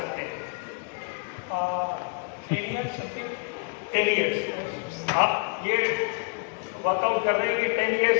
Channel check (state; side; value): quieter; right; 34.3 dB